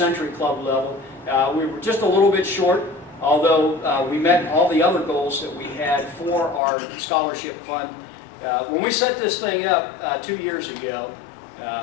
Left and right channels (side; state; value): right; drops out; at 6.6 s